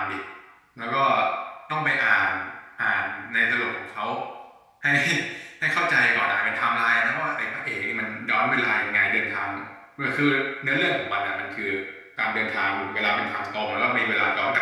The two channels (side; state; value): both; identical; correlation 1.00